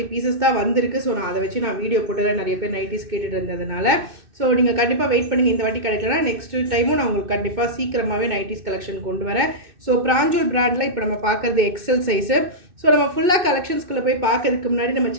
பீசஸ் தான் வந்திருக்கு. ஸோ நான் அதை வச்சு நான் வீடியோ போட்டுறேன். நிறைய பேர் நைட்டிஸ் கேட்டுட்டு இருந்ததுனால. ஸோ நீங்கள் கண்டிப்பாக வெயிட் பண்ணுங்கள். இந்த வாட்டி கிடைக்கலனா நெக்ஸ்ட் டைமும் நான் உங்களுக்கு கண்டிப்பாக சீக்கிரமாகவே நைட்டிஸ் கலெக்ஷன் கொண்டு வரேன். ஸோ பிராஞ்சுல் பிராண்டில் இப்போ நம்ம பார்க்குறது XL சைஸு. ஸோ நம்ம ஃபுல்லாக கலெக்ஷன்ஸ்குள்ளே போய் பார்க்கறதுக்கு முன்னாடி நம்ம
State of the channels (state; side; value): late; left; 2.6 ms